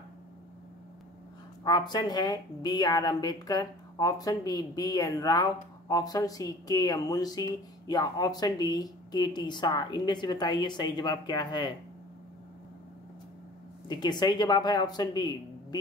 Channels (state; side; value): normal; both; correlation 0.45